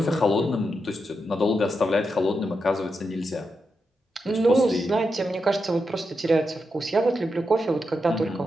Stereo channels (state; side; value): normal; both; correlation 0.86